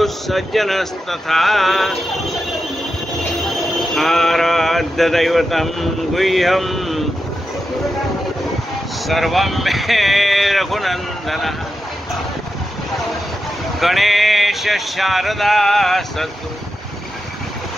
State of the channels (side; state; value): both; normal; correlation 0.89